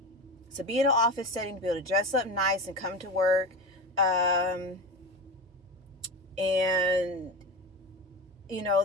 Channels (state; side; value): normal; both; correlation 0.24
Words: to be in an office setting, to be able to dress up nice and come to work. And,